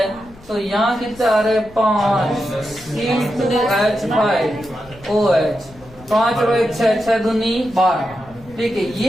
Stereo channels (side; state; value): left; noise; rumble, 23 dB below the sound